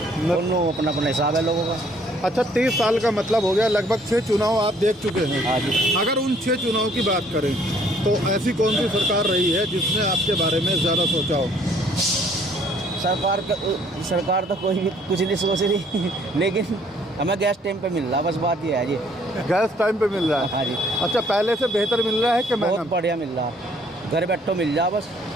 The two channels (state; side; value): normal; both; correlation 0.61